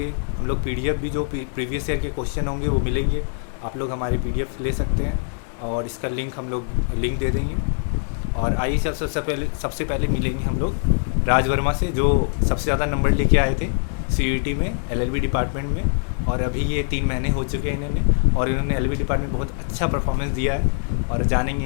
हम लोग पीडीएफ भी जो प्रीवियस ईयर के क्वेश्चन होंगे वो मिलेंगे, आप लोग हमारे पीडीएफ ले सकते हैं और इसका लिंक हम लोग लिंक दे देंगे। और आइए सबसे पहले मिलेंगे हम लोग राज वर्मा से, जो सबसे ज़्यादा नंबर लेके आए थे सीयूटी में एलएलबी डिपार्टमेंट में, और अभी ये 3 महीने हो चुके हैं इन्होंने, और इन्होंने एलएलबी डिपार्टमेंट में बहुत अच्छा परफॉर्मेंस दिया है। और जानेंगे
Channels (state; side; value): silent; right; 57 dB below the other